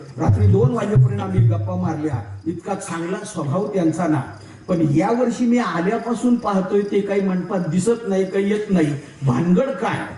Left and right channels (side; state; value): both; identical; correlation 1.00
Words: रात्री 2 वाजेपर्यंत आम्ही गप्पा मारल्या, इतका चांगला स्वभाव त्यांचा ना. पण या वर्षी मी आल्यापासून पाहतोय ते काही मंडपात दिसत नाही, काही येत नाही, भानगड काय?